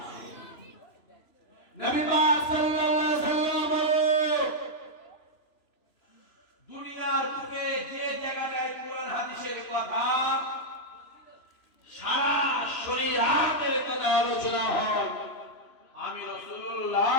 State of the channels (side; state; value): right; late; 3.0 ms